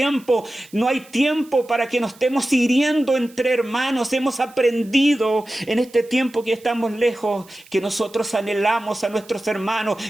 tiempo para que nos estemos hiriendo entre hermanos. Hemos aprendido en este tiempo que estamos lejos, que nosotros anhelamos a nuestros hermanos,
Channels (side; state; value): right; noise; hiss, 25 dB below the sound